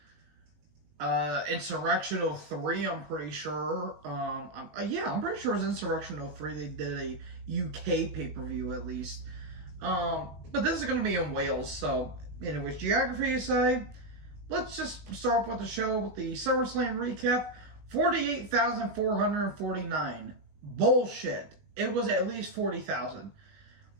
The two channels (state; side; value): late; left; 19 ms